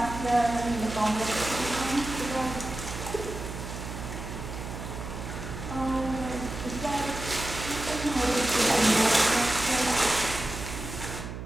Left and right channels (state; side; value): noise; right; hum, 8 dB below the sound